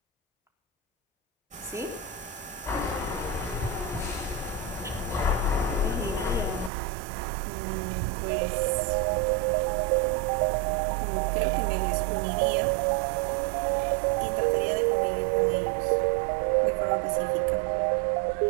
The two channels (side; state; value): left; drops out; at 6.7 s